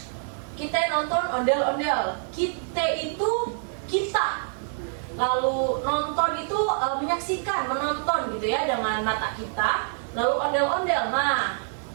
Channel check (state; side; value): silent; left; digital silence